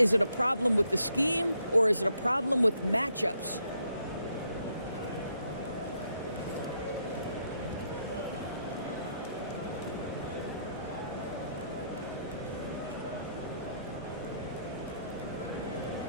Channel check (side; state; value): both; inverted; correlation -0.74